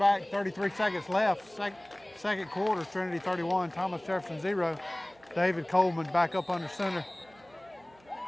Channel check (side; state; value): right; noise; hum, 29 dB below the sound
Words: 33 seconds left. Second quarter, Trinity 31, Thomas Jefferson 0. David Coleman back up under center.